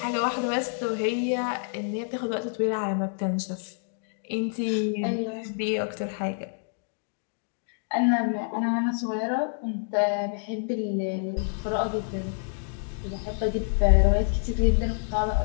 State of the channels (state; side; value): silent; right; 60 dB below the other